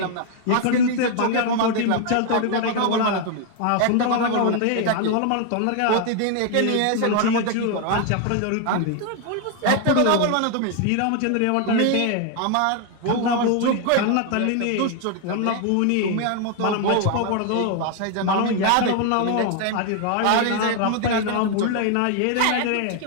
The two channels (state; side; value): different; both; correlation 0.01